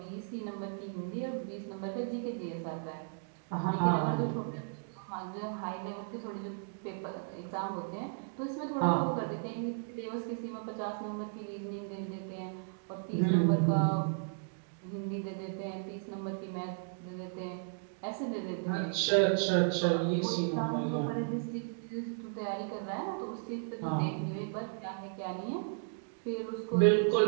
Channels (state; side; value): silent; left; digital silence